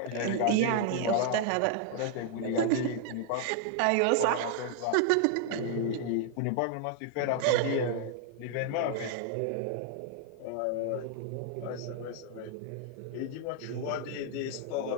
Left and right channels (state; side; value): different; both; correlation 0.00